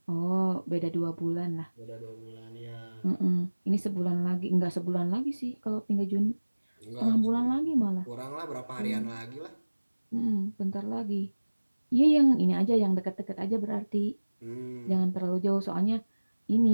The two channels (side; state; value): both; inverted; correlation -1.00